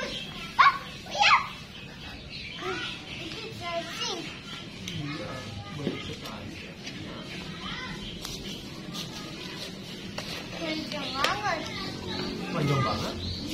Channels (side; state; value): both; identical; correlation 1.00